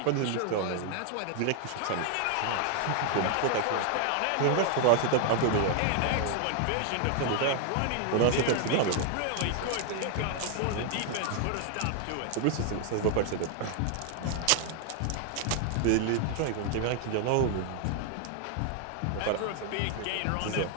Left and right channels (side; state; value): both; different; correlation 0.00